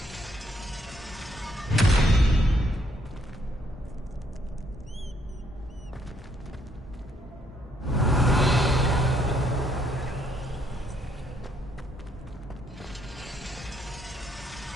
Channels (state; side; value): normal; both; correlation 0.71